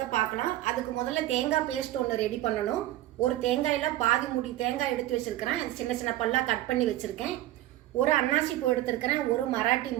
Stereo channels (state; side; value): quieter; left; 14.9 dB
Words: பார்க்கலாம். அதுக்கு முதல்ல தேங்காய் பேஸ்ட் ஒன்று ரெடி பண்ணணும். ஒரு தேங்காயில் பாதி முடி தேங்காய் எடுத்து வச்சுருக்கிறேன். சின்ன சின்ன பல்லாக கட் பண்ணி வச்சுருக்கேன். ஒரு அன்னாசி பூ எடுத்துருக்கிறேன். ஒரு மராட்டி